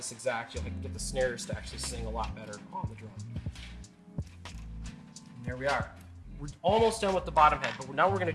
exact. You'll get the snares to actually sing a lot better on the drum. And there we are. We're almost done with the bottom head, but now what we're going to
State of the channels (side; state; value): both; identical; correlation 1.00